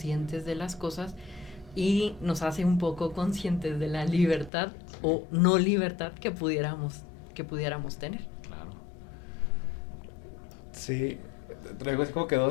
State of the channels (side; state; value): right; drops out; at 4.5 s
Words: de las cosas y nos hace un poco conscientes de la libertad o no libertad que pudiéramos tener. Claro. Sí, traigo así como que